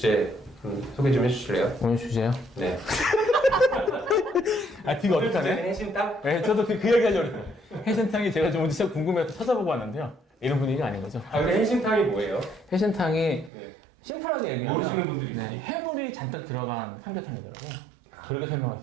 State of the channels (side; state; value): left; drops out; at 13.5 s